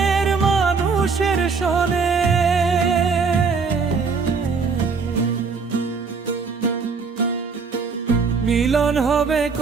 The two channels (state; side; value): quieter; left; 5.1 dB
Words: মানুষের সনে। মিলন হবে